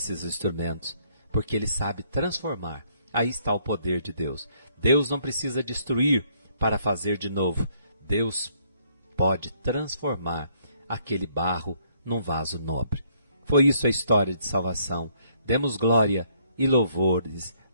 instrumentos, porque Ele sabe transformar. Aí está o poder de Deus. Deus não precisa destruir para fazer de novo. Deus pode transformar aquele barro num vaso nobre. Foi isso a história de salvação. Demos glória e louvores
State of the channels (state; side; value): inverted; both; correlation -0.67